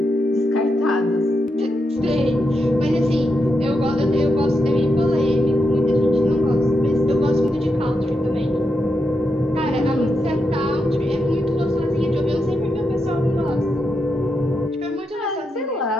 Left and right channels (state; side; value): normal; both; correlation 0.84